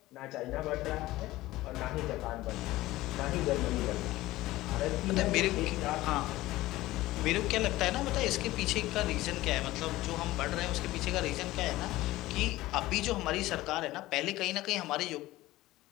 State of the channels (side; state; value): right; quieter; 17.5 dB